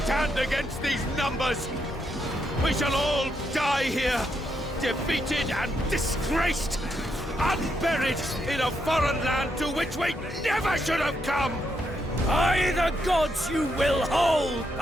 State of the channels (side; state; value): both; normal; correlation 0.79